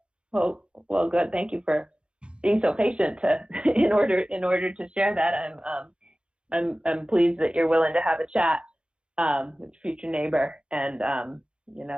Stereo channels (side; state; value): left; late; 0.055 ms